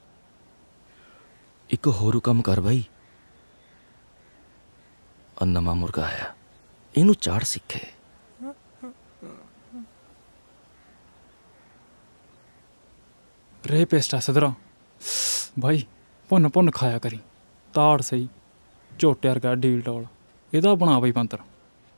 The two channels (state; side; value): inverted; both; correlation -1.00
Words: एक होर काम कर भाई नवा मुर्गा आया इनू चाड़ सीखे रे पेस्टा सदरा भाई भुन भुन खाया करी ताड़ सही झोटे वर्गा ढील टोल एदा बना भाई बंदर